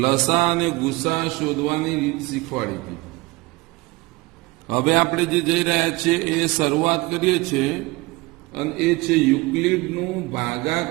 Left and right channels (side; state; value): left; quieter; 22.7 dB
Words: લસા અને ગુસા શોધવાની રીત શીખવાડી હતી. હવે આપણે જે જઈ રહ્યા છીએ એ શરૂઆત કરીએ છીએ, અને એ છે યુક્લિડનું